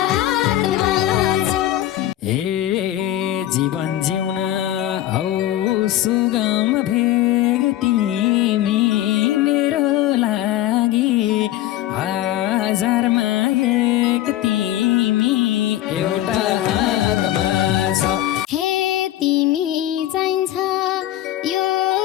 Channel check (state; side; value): quieter; right; 13.7 dB